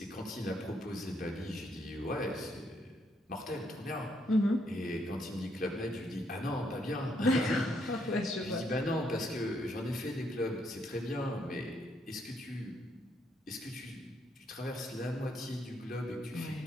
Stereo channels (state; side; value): normal; both; correlation 0.74